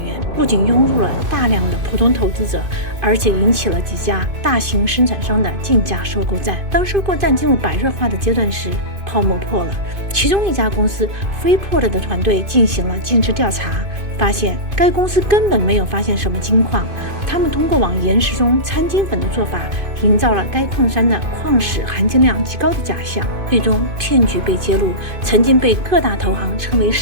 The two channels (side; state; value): left; late; 2.5 ms